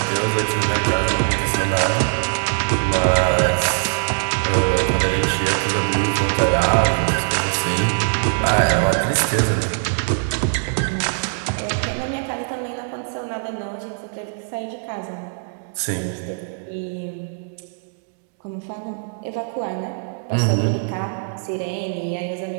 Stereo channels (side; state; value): left; silent; digital silence